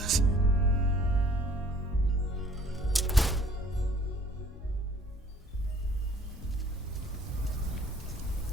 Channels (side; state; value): both; normal; correlation 0.55